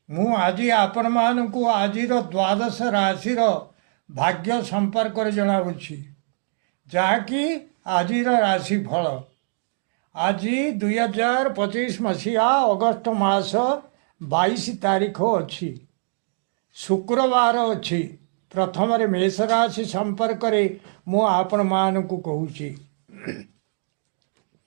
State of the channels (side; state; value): left; silent; digital silence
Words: मु आज आपण मानू आज द्वादश राशि भाग्य संपर्क जनावुछि जहाँकि आज राशि फल आज 2025 मसीहा अगस्त मास 22 तारीख अच्छी शुक्रवार अच्छी प्रथम मेष राशि संपर्क मु आपण मानू कहूँ